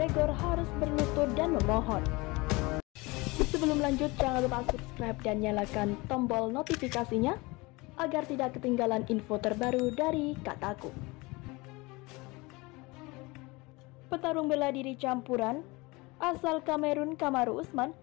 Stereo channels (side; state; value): right; quieter; 24.1 dB